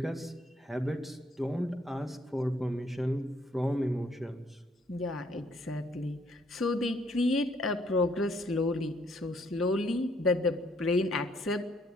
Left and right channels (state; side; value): normal; both; correlation 0.66